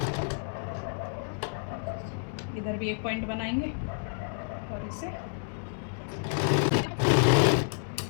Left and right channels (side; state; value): right; silent; digital silence